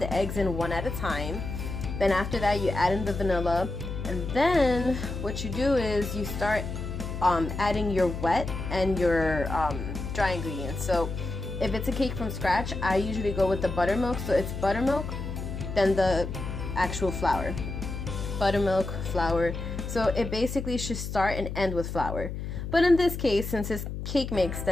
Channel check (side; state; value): left; noise; hum, 6 dB below the sound